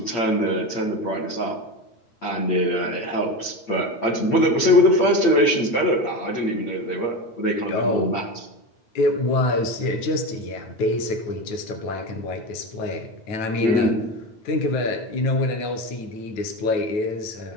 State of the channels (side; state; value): right; late; 8.6 ms